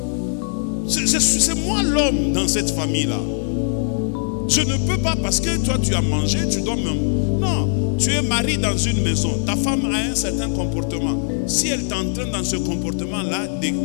C'est moi l'homme dans cette famille-là. Je ne peux pas parce que toi tu as mangé, tu dois même. Non, tu es marié dans une maison. Ta femme a un certain comportement. Si elle t'entraîne dans ce comportement-là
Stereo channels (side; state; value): right; silent; digital silence